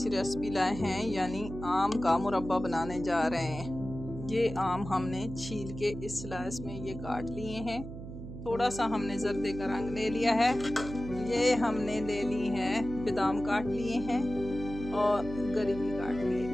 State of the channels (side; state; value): right; noise; hum, 10 dB below the sound